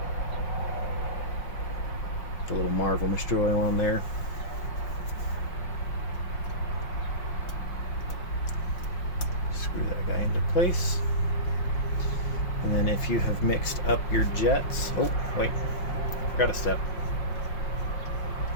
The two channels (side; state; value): right; late; 5.6 ms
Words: The little Marvel mystery oil on there. Screw that guy into place. And then if you have mixed up your jets, oh wait, forgot a step.